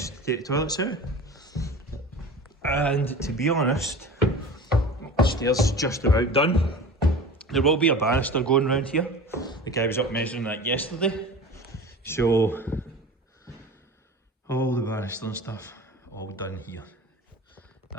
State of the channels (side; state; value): both; normal; correlation 0.36